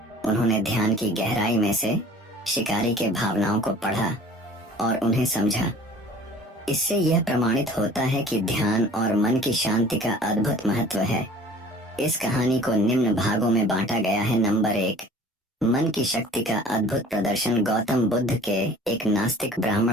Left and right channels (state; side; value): normal; both; correlation 0.47